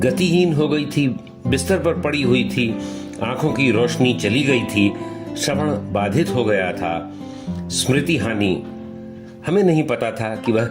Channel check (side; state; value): both; identical; correlation 1.00